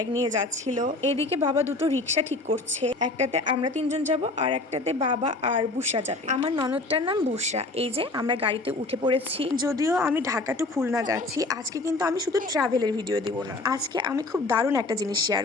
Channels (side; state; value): right; quieter; 3.1 dB